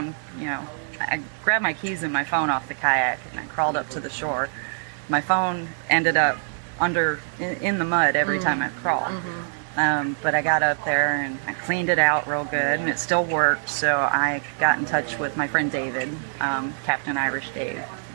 I grabbed my keys and my phone off the kayak and I crawled up to the shore. My phone ended up in the mud every time I crawled. But I got up there and I cleaned it out real good and it still worked. So I got in touch with my friend David, Captain Irish Dave.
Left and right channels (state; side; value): silent; left; digital silence